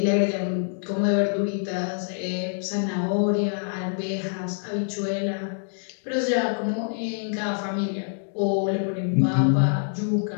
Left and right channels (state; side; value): silent; right; digital silence